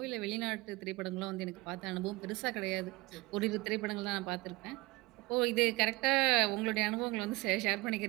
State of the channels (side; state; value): left; quieter; 22.4 dB